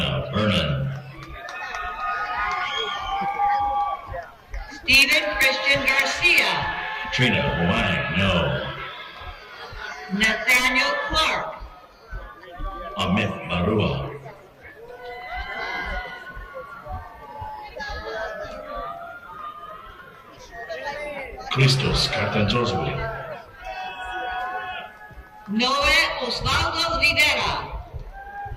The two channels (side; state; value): both; identical; correlation 1.00